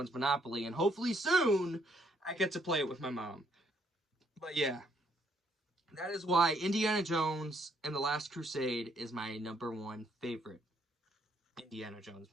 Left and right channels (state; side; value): normal; both; correlation 0.70